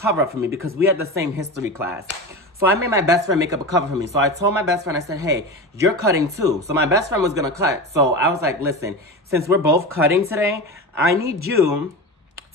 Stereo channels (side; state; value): both; normal; correlation 0.26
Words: up for me because we had the same history class. So I made my best friend make up a cover for me. So I told my best friend, I said, hey, you're cutting too. So my best friend was gonna cut. So I was like, listen, since we're both cutting today, I need you